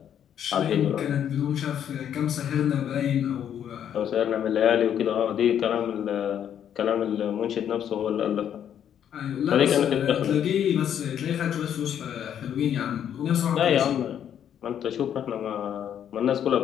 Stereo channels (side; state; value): right; quieter; 9.4 dB